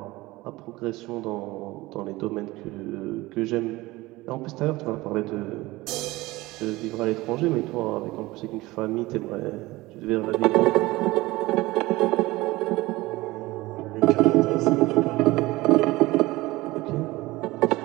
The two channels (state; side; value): quieter; left; 19.9 dB